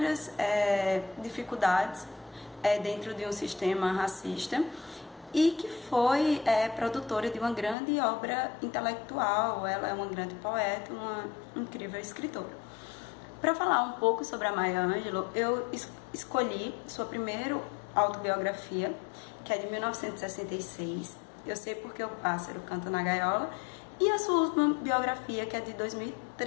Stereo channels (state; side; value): drops out; right; at 7.8 s